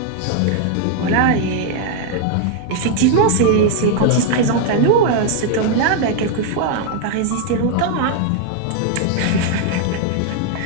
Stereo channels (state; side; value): different; both; correlation 0.00